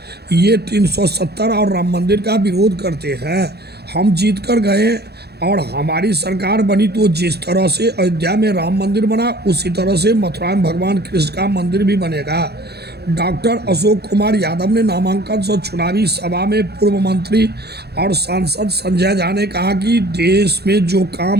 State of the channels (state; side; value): late; left; 0.47 ms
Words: ये 370 और राम मंदिर का विरोध करते हैं। हम जीत कर गए और हमारी सरकार बनी तो जिस तरह से अयोध्या में राम मंदिर बना उसी तरह से मथुरा में भगवान कृष्ण का मंदिर भी बनेगा। डॉक्टर अशोक कुमार यादव ने नामांकन सह चुनावी सभा में पूर्व मंत्री और सांसद संजय झा ने कहा कि देश में जो